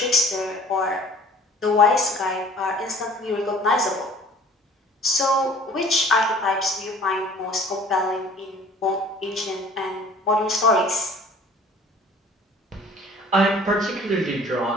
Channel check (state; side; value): normal; both; correlation 0.50